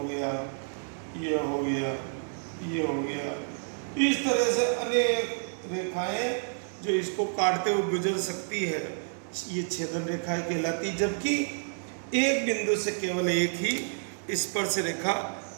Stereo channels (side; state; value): left; silent; digital silence